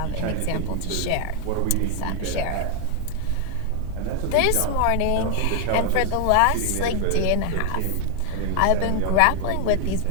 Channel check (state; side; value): different; both; correlation 0.00